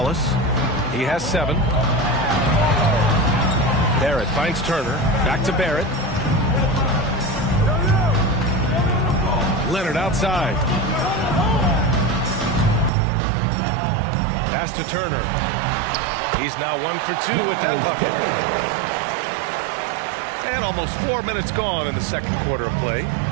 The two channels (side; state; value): left; drops out; at 12.9 s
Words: He has 7. Barrett finds Turner. Back to Barrett. Leonard outside. Pass to Turner. He's now 1 for 2 with that bucket. And almost 4 minutes gone in the second quarter of play.